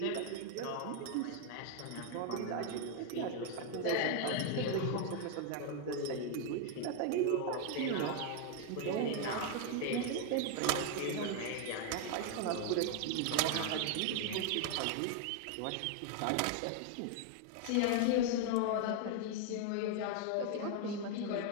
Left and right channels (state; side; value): different; both; correlation 0.00